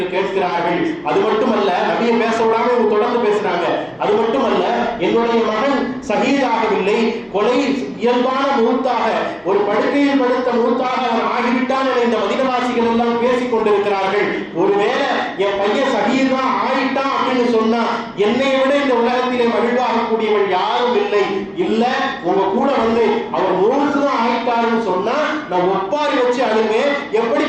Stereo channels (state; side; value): identical; both; correlation 1.00